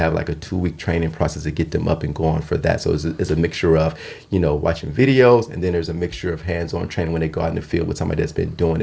like a 2-week training process to get them up and going for that. So it's a mixture of watching videos, and then there's a mixture of hands-on training when they go out in the field with somebody that's been doing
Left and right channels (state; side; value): identical; both; correlation 1.00